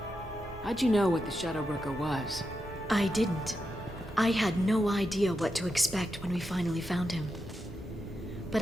How'd you know what the Shadow Broker was? I didn't. I had no idea what to expect when we finally found him. But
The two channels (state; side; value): normal; both; correlation 0.87